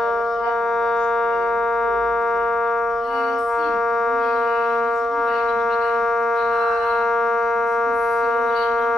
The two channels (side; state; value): both; normal; correlation 0.84